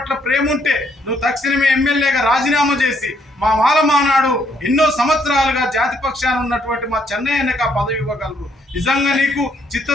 ప్రేమ ఉంటే నువ్వు తక్షణమే ఎమ్మెల్యేగా రాజీనామా చేసి మా మాల మానాడు ఎన్నో సంవత్సరాలుగా జాతి పక్షాన ఉన్నటువంటి మా చెన్నయ్యకి ఆ పదవి ఇవ్వగలరు. నిజంగా నీకు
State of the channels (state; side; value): normal; both; correlation 0.71